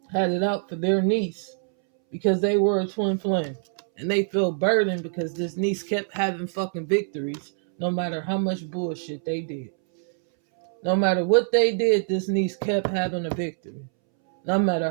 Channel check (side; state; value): left; silent; 62 dB below the other